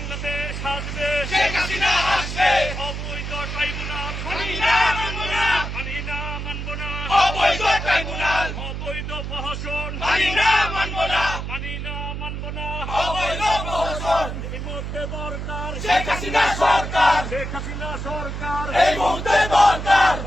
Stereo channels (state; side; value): noise; right; hum, 5 dB below the sound